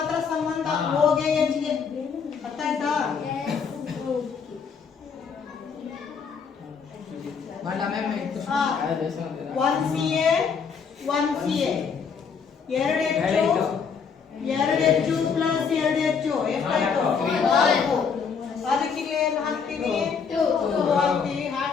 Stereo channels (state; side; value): quieter; right; 6.1 dB